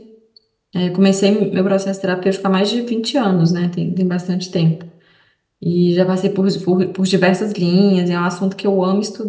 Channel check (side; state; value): both; identical; correlation 1.00